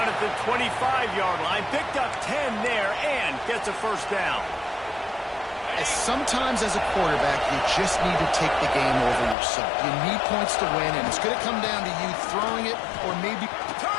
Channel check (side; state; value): right; drops out; at 9.3 s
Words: at the 25-yard line. Picked up 10 there and gets a 1st down. Sometimes as a quarterback, you just need to take the game over yourself. You need points to win, and it's going to come down to you throwing it or maybe